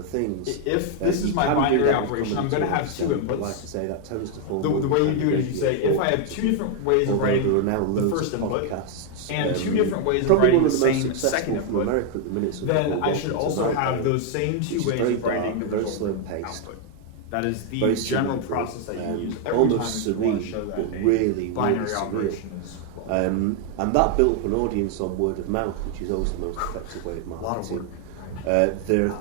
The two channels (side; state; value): both; different; correlation 0.00